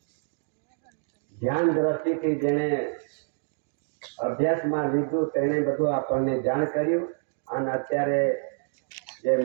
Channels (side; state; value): left; silent; digital silence